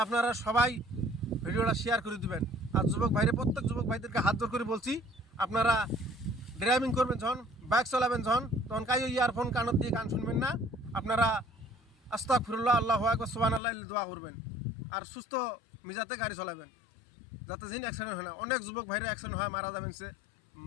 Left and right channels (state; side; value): drops out; right; at 13.6 s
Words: আপনারা সবাই ভিডিওটা শেয়ার করে দিবেন। আর যুবক ভাইরে, প্রত্যেক যুবক ভাইদেরকে হাত জোর করে বলছি, আপনারা ড্রাইভিং করবেন যখন, বাইক চালাবেন যখন, তখন কাইও ইয়ারফোন কানত দিয়ে গান শুনবেন না। আপনারা আস্তাগফিরুল্লাহ, আল্লাহু আকবার, সুবহানাল্লাহ দোয়া করবেন। আর সুস্থ মিজাতে গাড়ি চালাবেন, যাতে যিনি অ্যাক্সিডেন্ট হয় না। অনেক যুবক ভাইরা অ্যাক্সিডেন্ট হয়, মারা যাবেন। সে